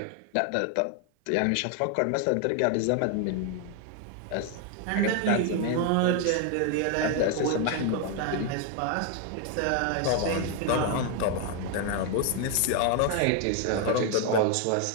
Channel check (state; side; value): different; both; correlation 0.01